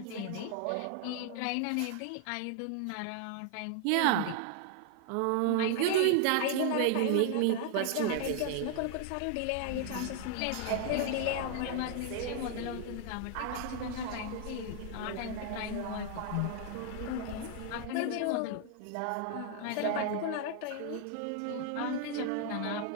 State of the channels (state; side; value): different; both; correlation 0.00